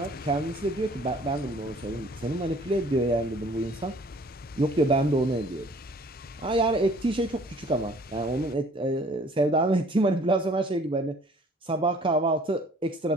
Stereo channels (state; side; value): normal; both; correlation 0.54